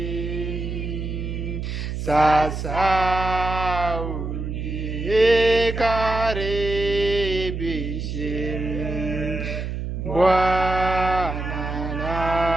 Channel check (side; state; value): right; noise; hum, 4 dB below the sound